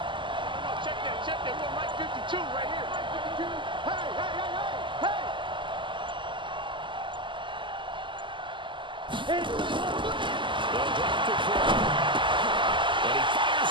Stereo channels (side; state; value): left; late; 0.24 ms